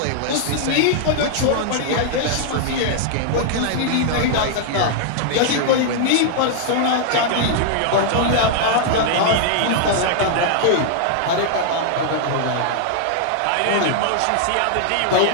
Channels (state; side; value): different; both; correlation -0.01